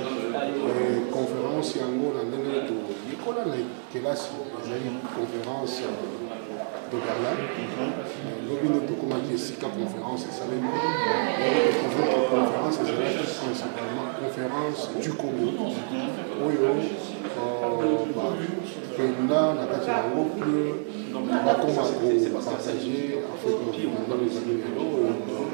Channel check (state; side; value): silent; left; digital silence